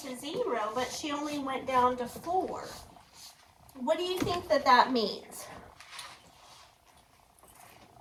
to 0, but she only went down to 4. What do you think that means?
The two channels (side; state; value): both; identical; correlation 1.00